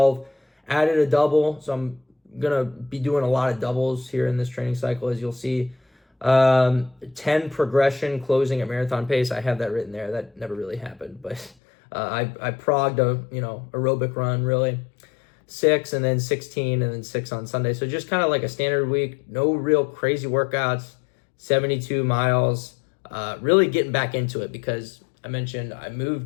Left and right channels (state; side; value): drops out; right; at 11.6 s